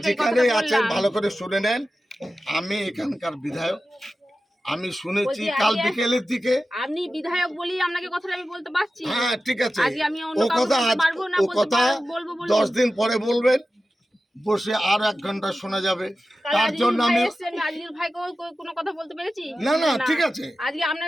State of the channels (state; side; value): normal; both; correlation 0.93